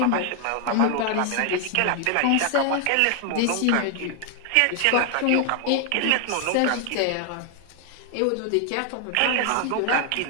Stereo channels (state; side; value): different; both; correlation 0.00